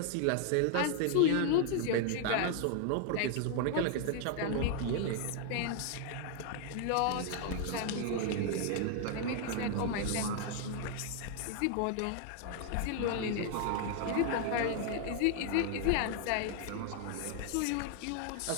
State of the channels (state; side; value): different; both; correlation 0.00